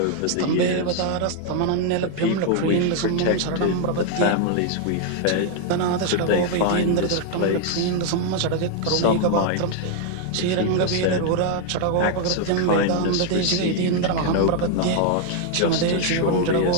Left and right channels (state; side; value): different; both; correlation 0.00